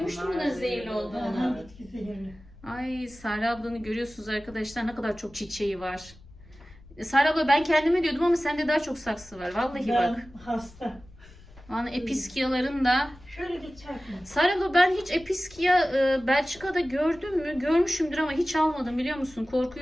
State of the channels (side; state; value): left; noise; rumble, 23 dB below the sound